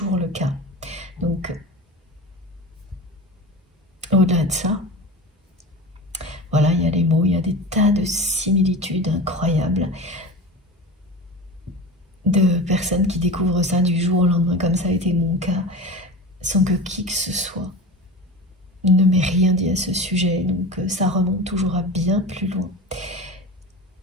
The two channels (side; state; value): both; normal; correlation 0.30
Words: le cas. Donc, au-delà de ça, voilà, il y a les mots, il y a des tas de similitudes incroyables de personnes qui découvrent ça du jour au lendemain, comme ça a été mon cas, sans que qui que ce soit ne m'ait rien dit à ce sujet. Donc ça remonte toujours à bien plus loin.